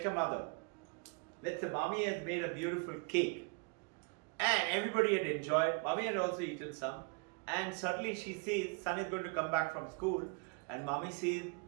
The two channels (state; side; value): quieter; left; 34.2 dB